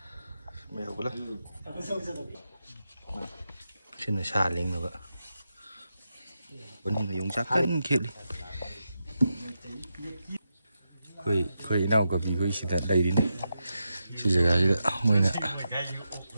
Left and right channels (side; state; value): both; inverted; correlation -0.87